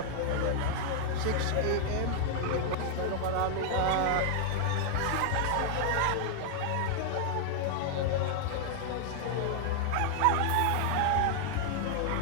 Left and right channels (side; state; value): both; different; correlation -0.01